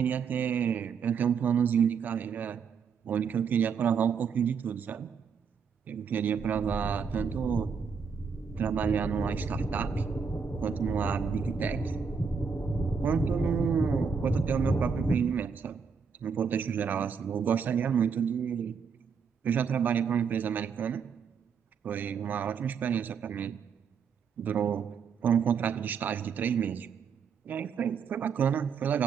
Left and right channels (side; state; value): left; quieter; 6.2 dB